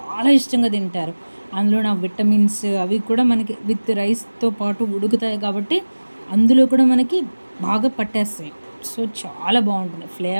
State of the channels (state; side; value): inverted; both; correlation -1.00